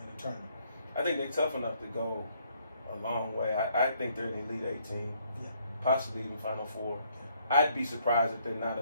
the tournament? I think they're tough enough to go a long way. I think they're an Elite Eight team, possibly even Final Four. I'd be surprised if they're not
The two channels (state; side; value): inverted; both; correlation -0.68